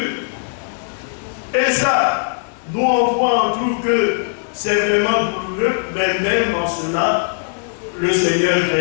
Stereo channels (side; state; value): right; silent; digital silence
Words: Et ça, nous on voit, on trouve que c'est vraiment douloureux, mais même en cela, le Seigneur